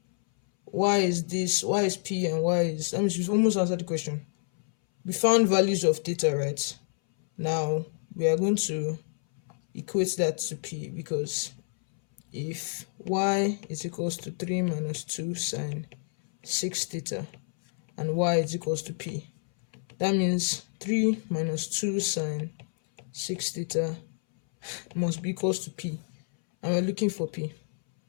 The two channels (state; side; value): silent; right; 59 dB below the other